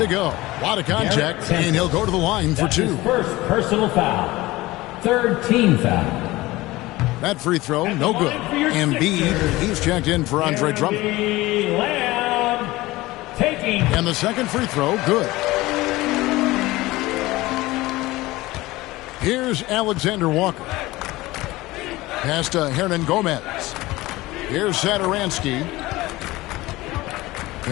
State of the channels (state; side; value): quieter; right; 19.2 dB